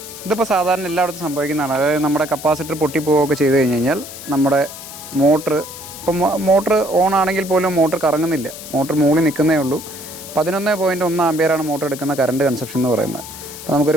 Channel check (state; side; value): noise; left; hiss, 13 dB below the sound